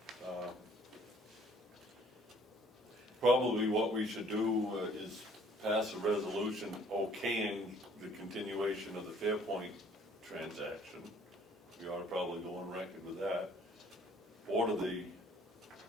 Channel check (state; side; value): normal; both; correlation 0.57